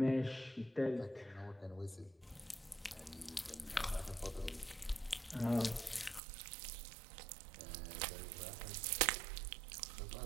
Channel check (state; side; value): drops out; left; at 6.2 s